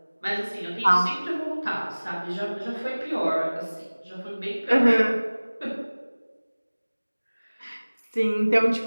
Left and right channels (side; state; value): both; inverted; correlation -1.00